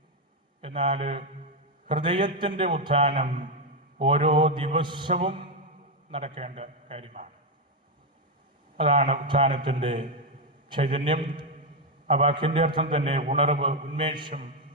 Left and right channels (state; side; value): normal; both; correlation 0.04